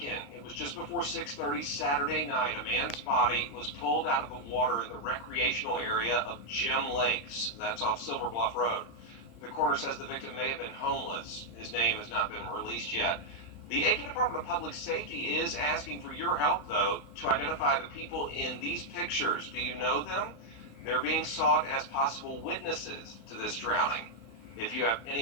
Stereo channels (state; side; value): late; right; 35 ms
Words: It was just before 6:30 Saturday night. A man's body was pulled out of the water in the recreational area of Gem Lakes. That's off Silver Bluff Road. The coroner says the victim may have been homeless. His name has not been released yet. The Aitkin Department of Public Safety is asking for your help, though, to identify the people in these pictures. Do you know them? They're being sought as possible witnesses to this drowning. If you have